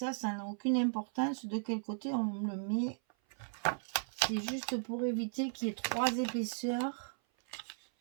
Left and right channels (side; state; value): left; silent; 54 dB below the other